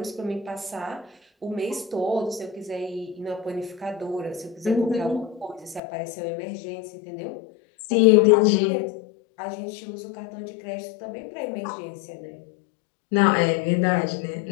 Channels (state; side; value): drops out; right; at 5.8 s